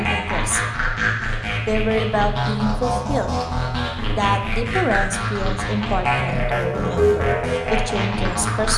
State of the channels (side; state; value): both; identical; correlation 1.00